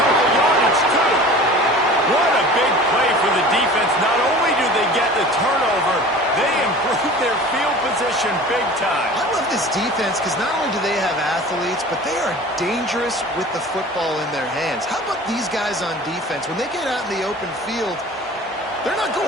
of yardage, too. What a big play for the defense. Not only do they get the turnover, they improve their field position big time. I love this defense because not only do they have athletes, but they are dangerous with the football in their hands. How about these guys on defense? When they get out in the open field, they're not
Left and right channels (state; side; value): normal; both; correlation 0.41